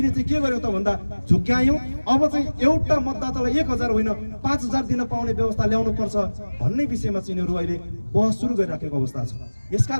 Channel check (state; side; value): inverted; both; correlation -1.00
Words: चाहिँ के गर्यौं त भन्दा झुक्यायौं। अब चाहिँ एउटा मतदातालाई 1000 होइन 5000 दिन पाउने व्यवस्था ल्याउनु पर्छ भन्ने विषयमा चाहिँ यिनीहरू अहिले बहस सुरु गरिराखेको अवस्था छ।